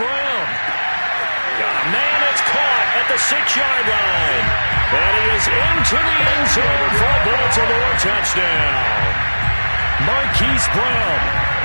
Got a man that's caught at the 6-yard line. And he is into the end zone for a Baltimore touchdown. Marquise Brown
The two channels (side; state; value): both; inverted; correlation -1.00